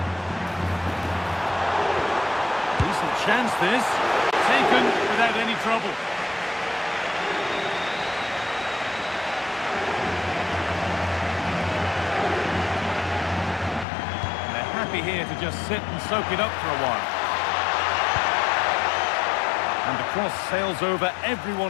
Decent chance this. Taken without any trouble. And they're happy here to just sit and soak it up for a while. And the cross sails over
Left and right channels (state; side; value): drops out; right; at 13.9 s